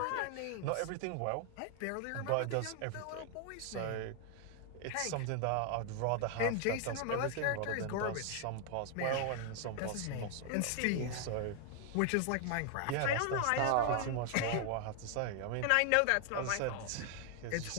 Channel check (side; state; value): both; different; correlation 0.00